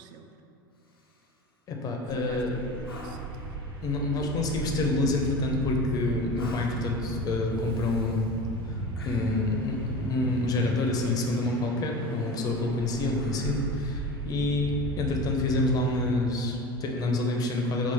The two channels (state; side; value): normal; both; correlation 0.33